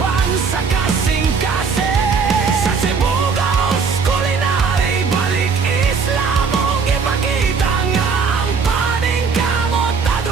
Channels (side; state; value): left; quieter; 5.4 dB